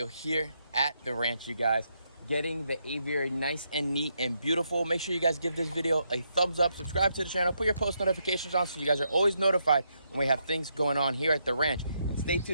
here at the ranch, you guys. Getting the aviary nice and neat and beautiful. Make sure you guys give this video a thumbs up, subscribe to the channel, put your post notifications on so you guys are always notified when we have things going on here at the ranch. And stay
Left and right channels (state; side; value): inverted; both; correlation -0.79